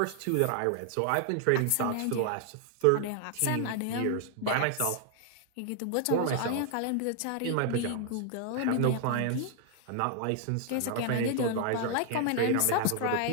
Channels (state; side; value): different; both; correlation 0.00